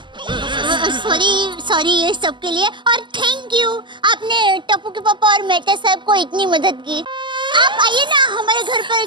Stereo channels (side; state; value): left; late; 0.23 ms